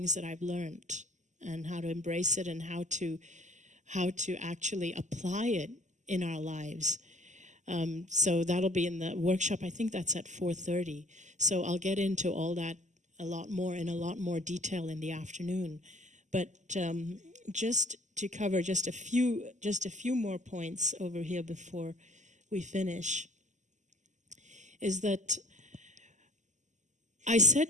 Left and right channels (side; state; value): left; late; 0.34 ms